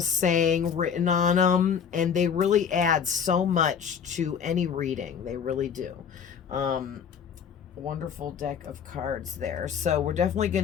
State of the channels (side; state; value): right; quieter; 7.3 dB